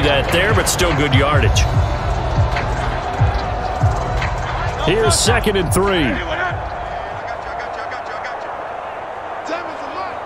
that there, but still good yardage. Here's 2nd and 3.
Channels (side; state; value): both; identical; correlation 1.00